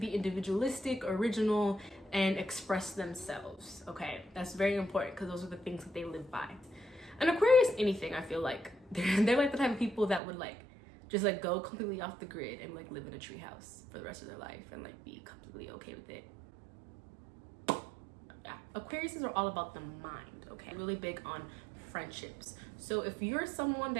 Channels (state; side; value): drops out; left; at 10.2 s